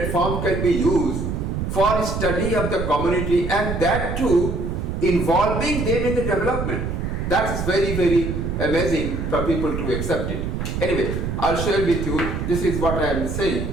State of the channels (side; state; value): right; noise; rumble, 3 dB below the sound